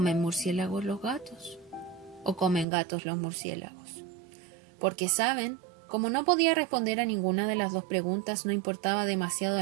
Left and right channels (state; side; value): drops out; left; at 2.7 s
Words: murciélagos los gatos. O comen gatos los murciélagos. porque saben, como no podía responder a ninguna de las dos preguntas, no importaba demasiado